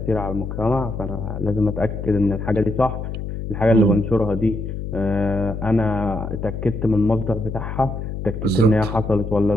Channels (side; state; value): left; noise; hum, 6 dB below the sound